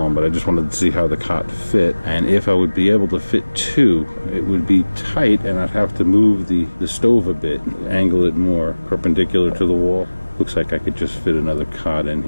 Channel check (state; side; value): inverted; both; correlation -1.00